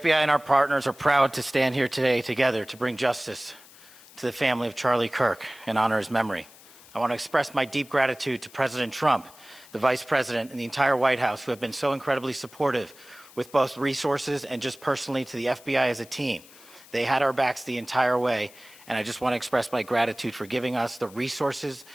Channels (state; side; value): noise; left; hiss, 22 dB below the sound